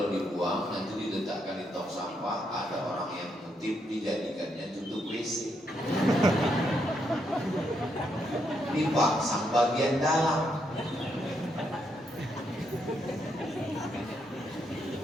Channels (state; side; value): normal; both; correlation 0.78